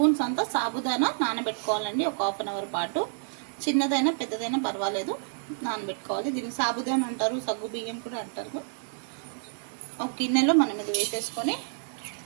అంతా సాబుదానా నానబెట్టుకోవాలండి. ఒక హాఫ్ అన్ అవర్ పాటు, చిన్నదైనా పెద్దదైనా పర్వాలేదు, నానబెట్టుకోవాలి. దీన్ని సాబుదానా అంటారు, సగ్గు బియ్యం కూడా అంటారు. ఒక గిన్నెలో మనం ఇది వేసేసుకొని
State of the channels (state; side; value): silent; left; digital silence